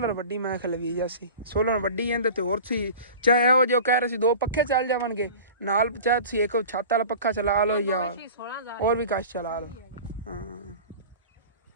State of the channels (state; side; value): inverted; both; correlation -0.38